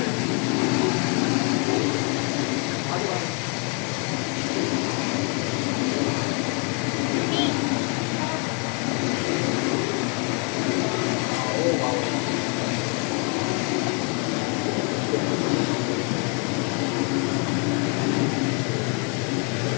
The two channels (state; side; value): quieter; right; 36.2 dB